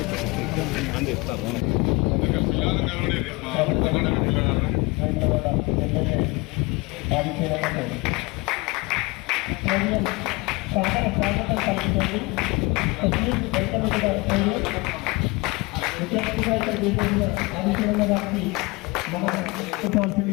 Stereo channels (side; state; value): right; quieter; 25.3 dB